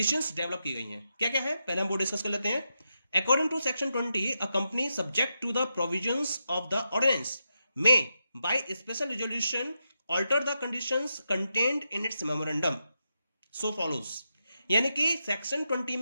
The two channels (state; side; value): inverted; both; correlation -0.86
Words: डेवलप की गई हैं। क्या क्या है, पहले हम वो डिस्कस कर लेते हैं। According to Section 20, a company subject to the provisions of the ordinance may, by special resolution, alter the conditions contained in its memorandum. So follows. यानी कि सेक्शन 20